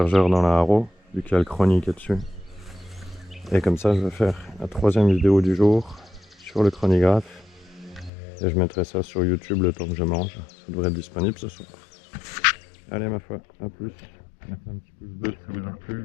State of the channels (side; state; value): right; drops out; at 8.1 s